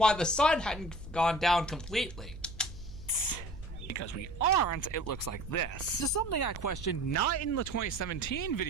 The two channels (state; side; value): noise; right; hum, 14 dB below the sound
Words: the sun hadn't gone down completely. Because we aren't, it looks like this. This is something I questioned not in the 2017